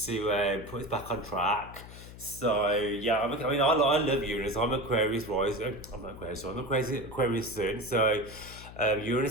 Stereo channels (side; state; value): left; noise; hum, 15 dB below the sound